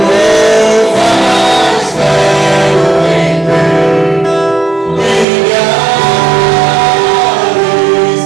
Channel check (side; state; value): left; drops out; at 5.2 s